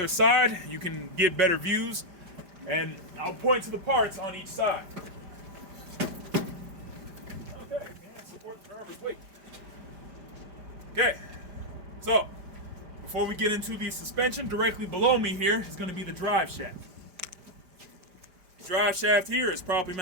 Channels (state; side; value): late; left; 5.0 ms